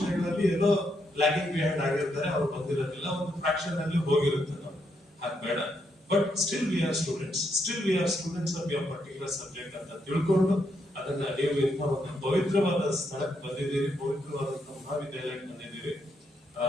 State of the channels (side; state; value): both; normal; correlation 0.78